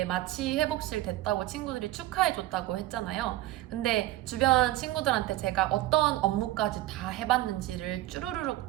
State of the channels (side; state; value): left; quieter; 16.0 dB